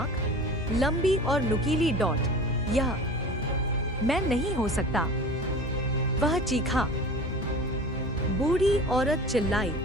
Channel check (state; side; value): normal; both; correlation 0.37